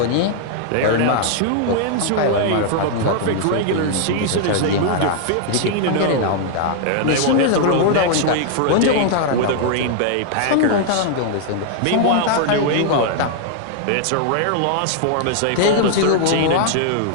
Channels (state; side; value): different; both; correlation 0.00